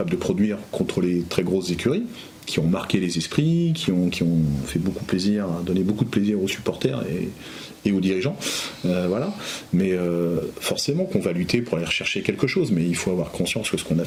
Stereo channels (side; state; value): both; identical; correlation 1.00